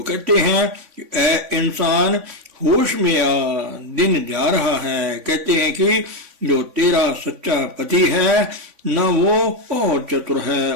कहते हैं कि ऐ इंसान, होश में आ, दिन जा रहा है। कहते हैं कि जो तेरा सच्चा पति है, न वो और चतुर है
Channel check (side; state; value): left; late; 3.5 ms